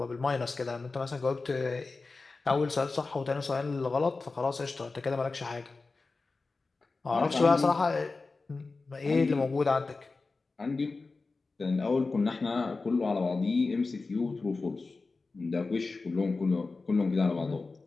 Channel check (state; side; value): quieter; right; 3.8 dB